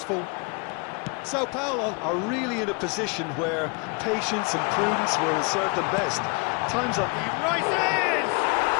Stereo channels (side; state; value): right; quieter; 32.7 dB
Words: Sao Paulo are really in a position where patience and prudence will serve them best. Time's up. He rises!